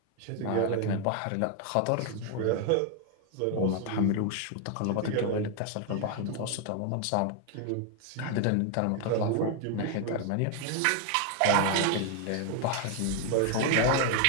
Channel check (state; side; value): different; both; correlation 0.01